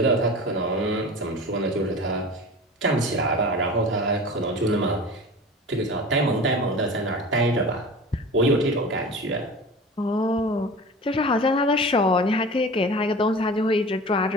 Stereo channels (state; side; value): normal; both; correlation 0.36